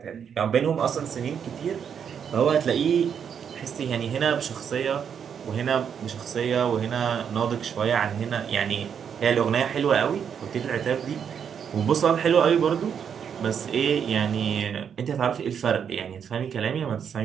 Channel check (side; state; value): left; quieter; 7.7 dB